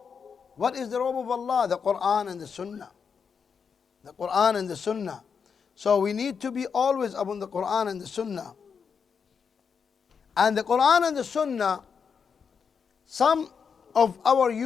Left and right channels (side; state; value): right; quieter; 6.3 dB